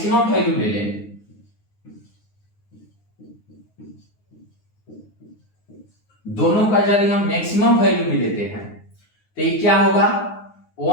वैल्यू ले लें, दोनों का यदि हम मैक्सिमम वैल्यू भी लेते हैं तो ये क्या होगा,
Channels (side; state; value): right; late; 9.6 ms